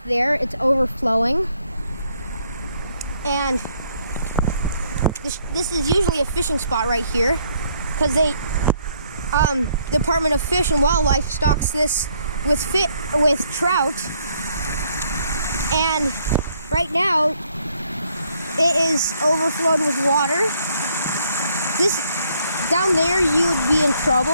there, it's overflowing. And this is usually a fishing spot right here because they, Department of Fish and Wildlife stocks this with trout. And right now, it is overflowed with water. This, down there, you would be in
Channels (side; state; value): both; inverted; correlation -0.68